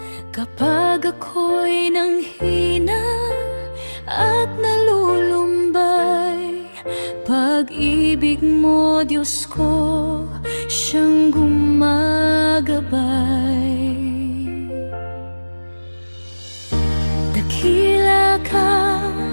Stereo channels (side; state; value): both; inverted; correlation -1.00